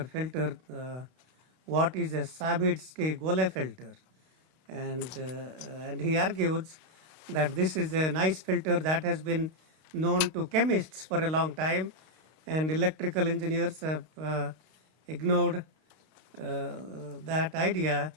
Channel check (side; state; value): left; late; 32 ms